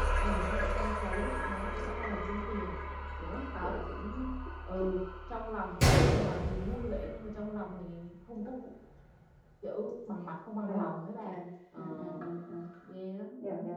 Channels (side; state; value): both; identical; correlation 1.00